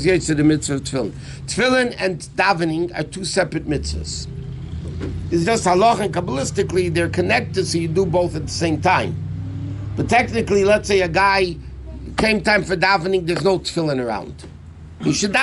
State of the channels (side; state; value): both; identical; correlation 1.00